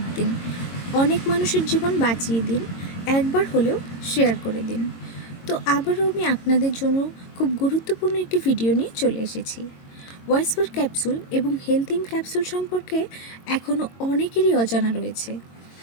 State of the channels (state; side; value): late; right; 22 ms